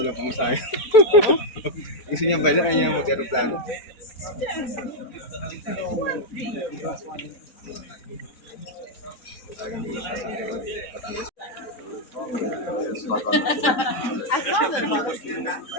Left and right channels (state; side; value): late; right; 4.0 ms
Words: lang pamasahe. Gusto niya baydan, kaya niya mag-aeroplano.